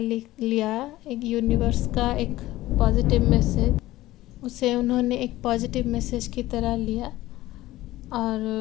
लिया, एक यूनिवर्स का एक पॉजिटिव मैसेज, उसे उन्होंने एक पॉजिटिव मैसेज की तरह लिया और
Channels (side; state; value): right; quieter; 16.6 dB